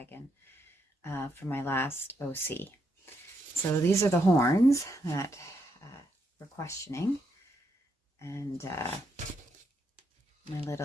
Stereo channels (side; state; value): both; normal; correlation 0.78